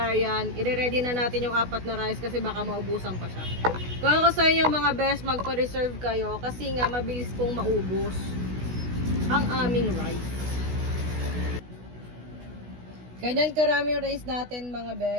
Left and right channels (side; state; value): left; late; 16 ms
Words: I-ready na natin yung 4 na rice kasi baka maubusan pa siya. Kung ako sa inyo mga best, magpa-reserve kayo kasi nga mabilis pong maubos ang aming rice. Ganyan karami yung rice natin mga